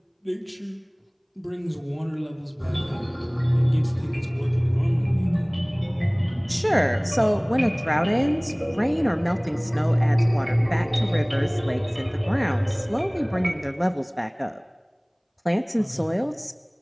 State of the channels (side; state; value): both; identical; correlation 1.00